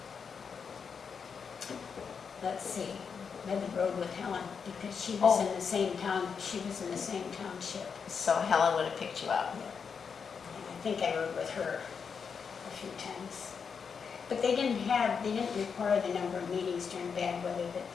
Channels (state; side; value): quieter; right; 6.2 dB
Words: Let's see, I had the road with Helen, because she was in the same town, she was in the same township. So Helen would have picked you up. Yeah. And I think I rode with her a few times. But they didn't require the number of meetings during bad weather that